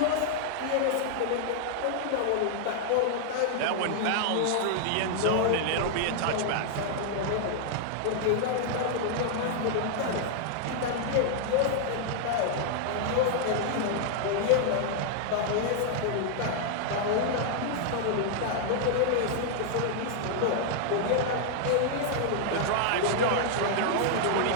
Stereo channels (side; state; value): both; different; correlation -0.01